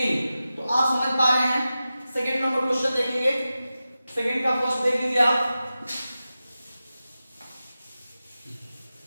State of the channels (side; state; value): both; inverted; correlation -0.94